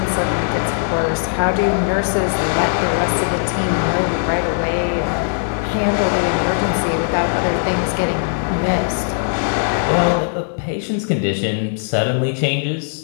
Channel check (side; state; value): right; silent; digital silence